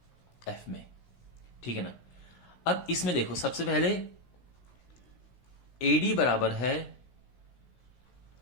में। ठीक है ना? अब इसमें देखो, सबसे पहले एडी बराबर है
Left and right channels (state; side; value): late; right; 16 ms